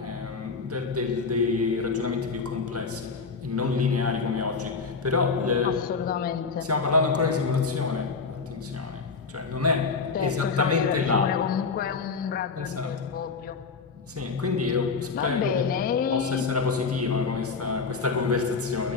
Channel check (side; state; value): right; quieter; 4.8 dB